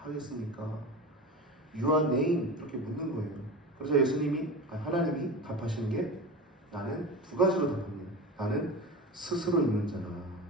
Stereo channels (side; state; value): both; normal; correlation 0.28